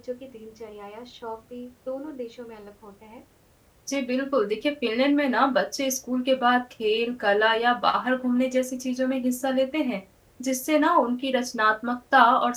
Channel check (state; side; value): identical; both; correlation 1.00